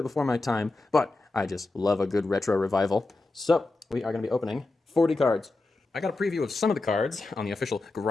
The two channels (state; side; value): quieter; right; 3.2 dB